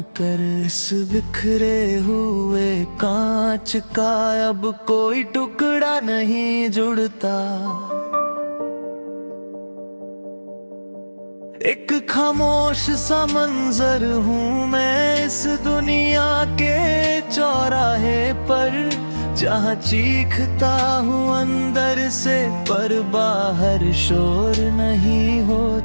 कर, इस बिखरे हुए कांच का अब कोई टुकड़ा नहीं जुड़ता। एक खामोश सा मंजर हूँ मैं इस दुनिया के चौराहे पर, जहाँ चीखता हूँ अंदर से पर बाहर शोर नहीं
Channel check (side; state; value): both; inverted; correlation -1.00